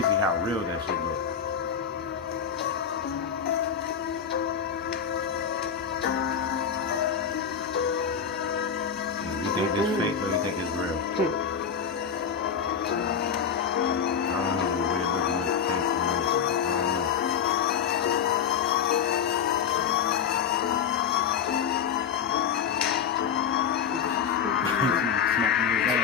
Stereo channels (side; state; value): right; quieter; 7.4 dB